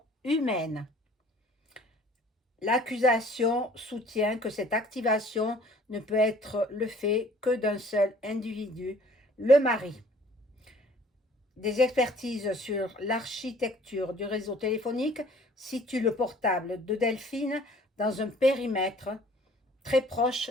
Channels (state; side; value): normal; both; correlation 0.53